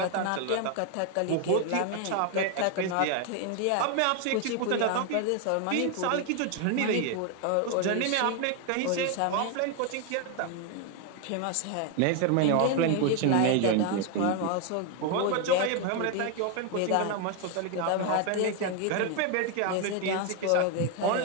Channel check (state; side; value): different; both; correlation 0.01